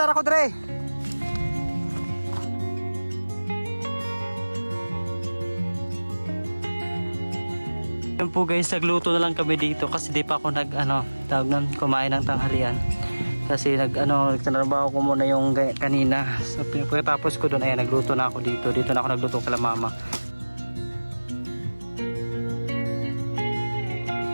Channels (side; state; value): both; inverted; correlation -1.00